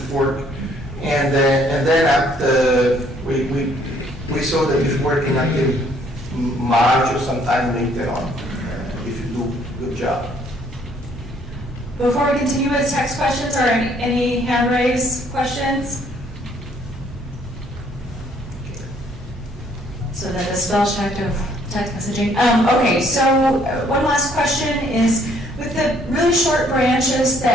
work. And then after we saw that it's working until March or sometime later on, if you do a good job. Before we continue with text questions, or any hand raised questions? So that the spell check of text messaging. Okay, so one last question is, with with the really short branches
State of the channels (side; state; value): both; normal; correlation 0.64